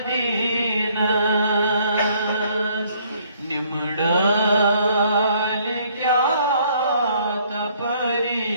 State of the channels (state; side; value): inverted; both; correlation -0.63